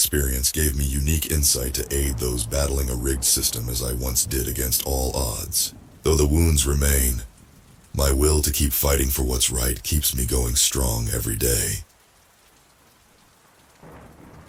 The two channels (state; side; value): identical; both; correlation 1.00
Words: gave me unique insight to aid those battling a rigged system as I once did against all odds. Though the wounds remain, my will to keep fighting for what's right keeps me going strong every day.